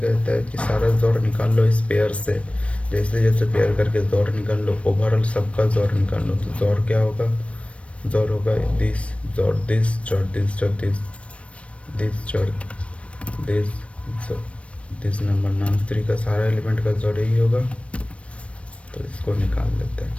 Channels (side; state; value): right; late; 0.062 ms